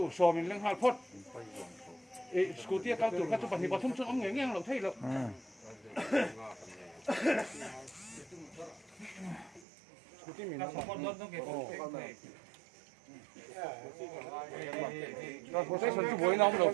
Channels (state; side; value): drops out; left; at 9.7 s